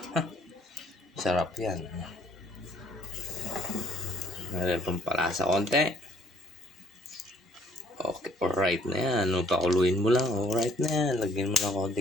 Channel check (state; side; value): normal; both; correlation 0.62